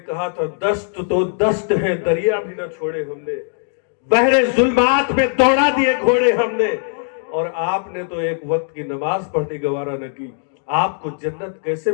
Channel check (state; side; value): silent; right; digital silence